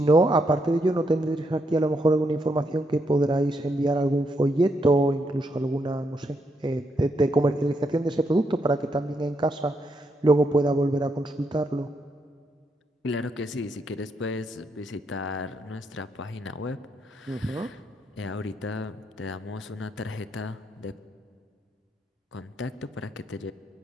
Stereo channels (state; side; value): normal; both; correlation 0.78